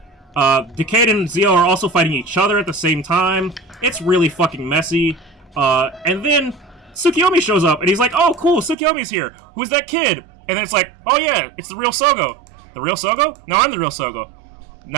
Decade and Zi-O are also fighting each other at the same time. It's really fucking messy. And then Tsukiyomi shows up, and he's like, oh, cool, Tsukiyomi's here. Who's that kid? And then it's like, oh yeah, it's the real Sougo. The real Sougo? No, I'm the real Sougo.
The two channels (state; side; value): drops out; left; at 8.8 s